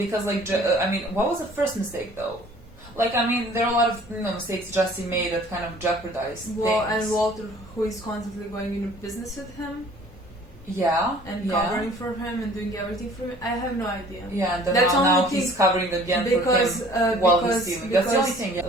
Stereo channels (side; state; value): both; normal; correlation 0.52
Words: like I mean, what was the first mistake though? Like, I mean, there are a lot of mistakes Jesse made that kind of jeopardized things. And Walter, who is constantly going into business with him. Yeah. And covering for him and doing everything for him. I have no idea. Yeah, and then now he's covering again for him while he's stealing. That's the only thing. Yeah, that